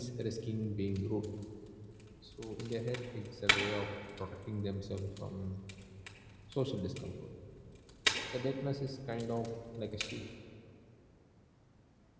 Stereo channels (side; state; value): both; identical; correlation 1.00